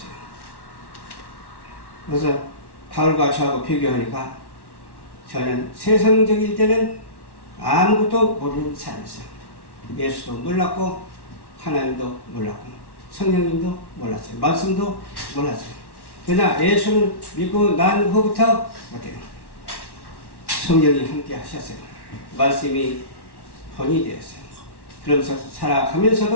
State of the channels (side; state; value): right; late; 1.1 ms